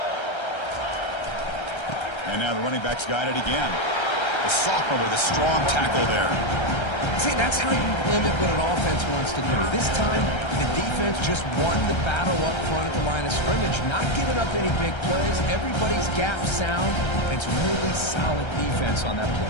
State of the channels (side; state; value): right; late; 1.3 ms